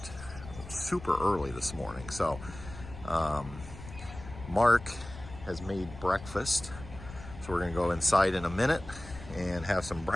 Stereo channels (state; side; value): noise; left; rumble, 14 dB below the sound